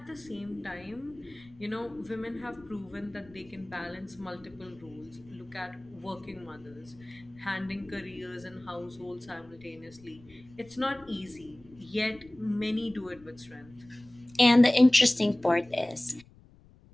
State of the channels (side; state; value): left; noise; rumble, 25 dB below the sound